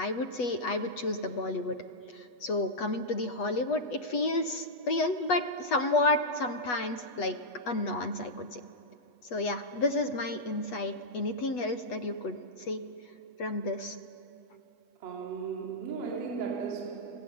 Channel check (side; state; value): right; late; 8.2 ms